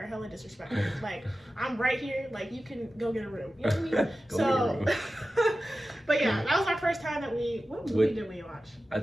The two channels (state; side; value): normal; both; correlation 0.94